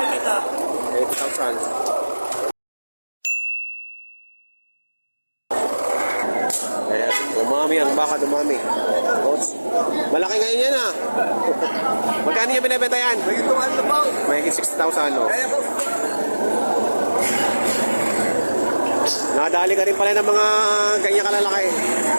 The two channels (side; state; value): both; inverted; correlation -1.00